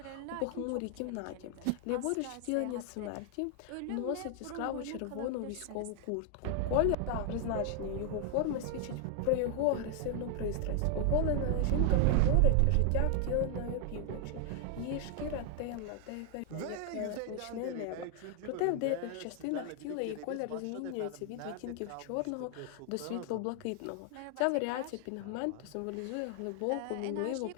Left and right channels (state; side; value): different; both; correlation 0.00